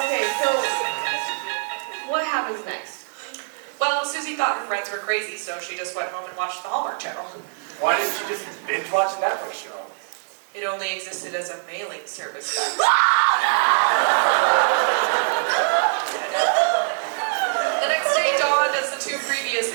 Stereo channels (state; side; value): silent; left; digital silence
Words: so what happens next? Well, Susie thought her friends were crazy, so she just went home and watched the Hallmark Channel. Why didn't you just binge watch a Netflix show? It only existed as a mailing service back then. The next day dawned as the two previous